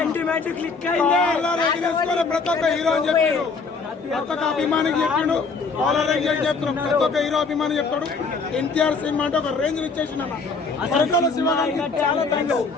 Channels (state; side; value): quieter; right; 4.5 dB